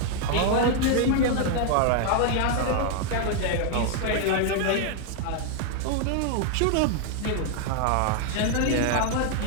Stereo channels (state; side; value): different; both; correlation 0.00